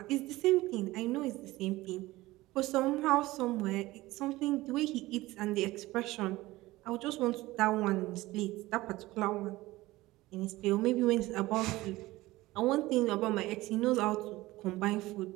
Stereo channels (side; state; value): left; quieter; 18.6 dB